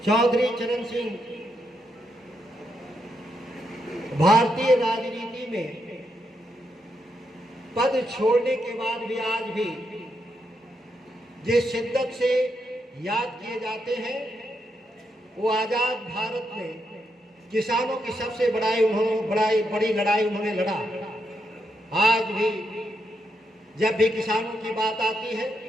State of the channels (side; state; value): both; normal; correlation 0.81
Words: चौधरी चरण सिंह भारतीय राजनीति में पद छोड़ने के बाद भी आज भी जिस शिद्दत से याद किए जाते हैं, वो आजाद भारत में किसानों की सबसे बड़ी लड़ाई उन्होंने लड़ा। आज भी जब भी किसानों की बात आती है,